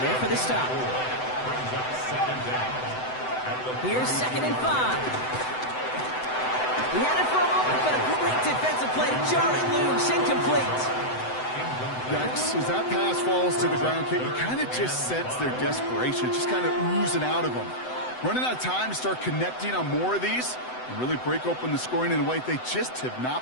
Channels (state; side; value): late; right; 7.9 ms